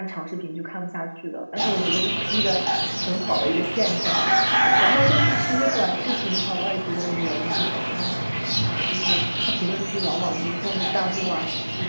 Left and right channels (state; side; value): inverted; both; correlation -1.00